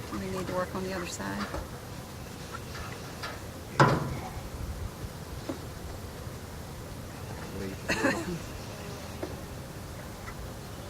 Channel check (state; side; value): identical; both; correlation 1.00